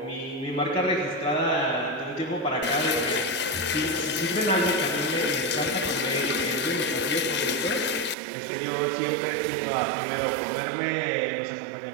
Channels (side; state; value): left; drops out; at 8.2 s